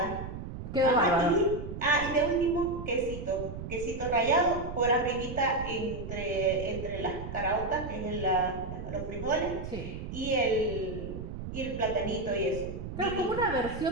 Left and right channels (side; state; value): right; noise; rumble, 8 dB below the sound